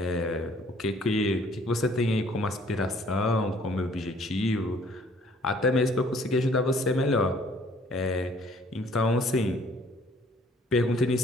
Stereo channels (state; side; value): normal; both; correlation 0.58